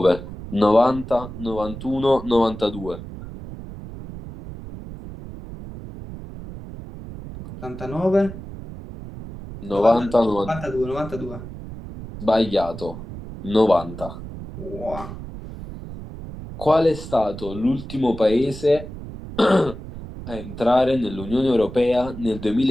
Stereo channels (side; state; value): right; noise; rumble, 12 dB below the sound